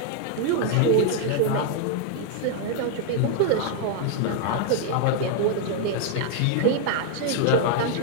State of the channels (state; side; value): different; both; correlation 0.00